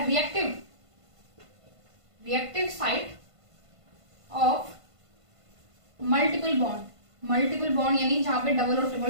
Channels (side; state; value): left; late; 1.5 ms